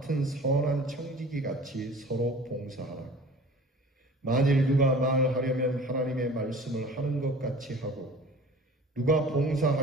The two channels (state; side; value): normal; both; correlation 0.44